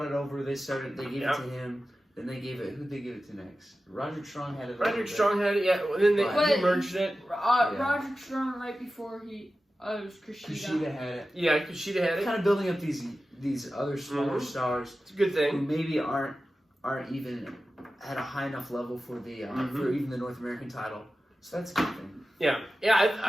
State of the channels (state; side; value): normal; both; correlation 0.94